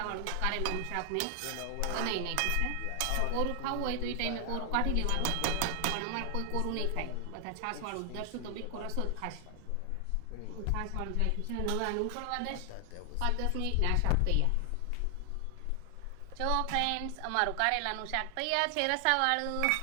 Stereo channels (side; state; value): both; different; correlation 0.00